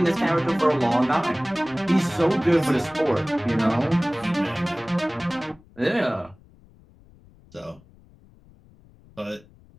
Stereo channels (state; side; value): noise; left; rumble, 27 dB below the sound